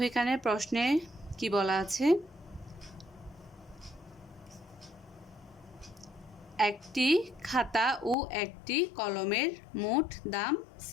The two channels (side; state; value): right; drops out; at 8.2 s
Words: এখানে প্রশ্নে কি বলা আছে। একটি খাতা ও একটি কলমের মোট দাম